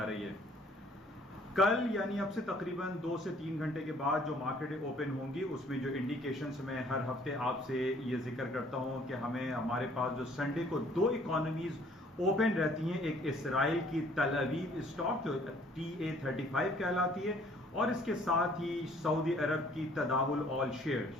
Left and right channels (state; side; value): normal; both; correlation 0.58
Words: रही है। कल यानी अब से तकरीबन 2 से 3 घंटे के बाद जो मार्केटें ओपन होंगी उसमें जो इंडिकेशंस मैं हर हफ्ते आपसे ये जिक्र करता हूँ कि हमारे पास जो संडे को 2 इकोनॉमीज ओपन रहती हैं, एक इसराइल की तल अवीव स्टॉक जो TA35 कहलाती है और इसके साथ ही सऊदी अरब की तदावुल ऑल